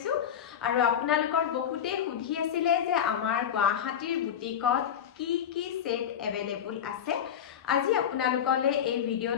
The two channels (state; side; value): quieter; right; 8.9 dB